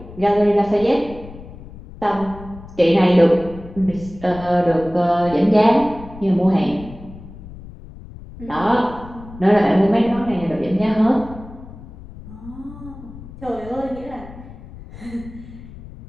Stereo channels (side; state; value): left; noise; rumble, 16 dB below the sound